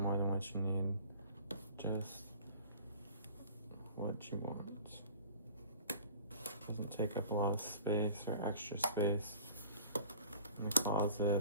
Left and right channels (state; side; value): inverted; both; correlation -0.44